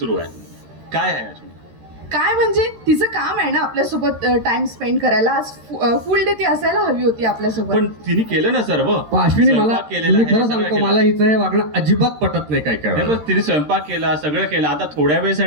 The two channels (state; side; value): late; left; 13 ms